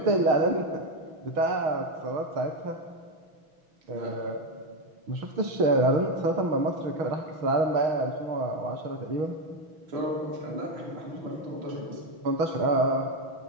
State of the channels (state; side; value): late; left; 6.1 ms